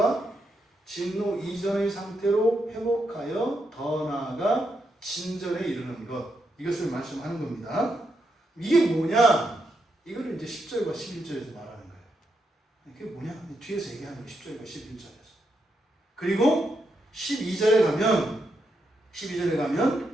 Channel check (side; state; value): both; normal; correlation 0.82